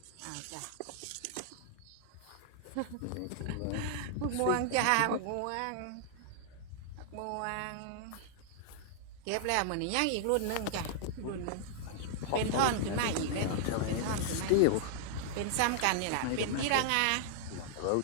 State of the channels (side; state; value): both; different; correlation -0.01